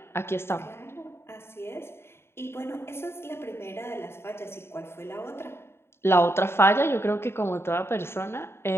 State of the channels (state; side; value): late; right; 0.12 ms